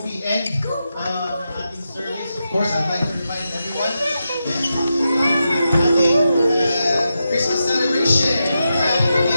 end ang ating service, of course, I'd like to remind everyone, ating Christmas celebration will be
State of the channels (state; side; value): inverted; both; correlation -0.88